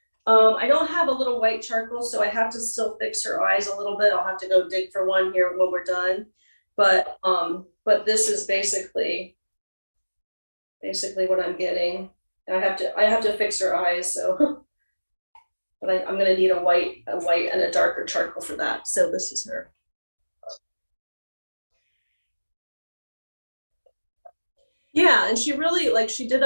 I don't have a little white charcoal, so I have to still fix her eyes a little bit. I'll have to go dig for one here when we're done. But this is basically what I'm getting. I have to fix her eyes, so but I'm gonna need a white and a darker charcoal for that. So this is her. Yeah, and she really like she did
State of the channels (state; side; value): inverted; both; correlation -1.00